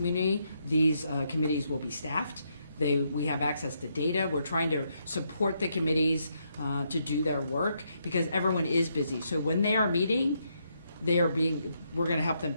These committees will be staffed. We have access to data. We're trying to support the committees to do their work because everyone is busy. So when they are meeting, we're going to help them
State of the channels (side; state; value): both; inverted; correlation -0.77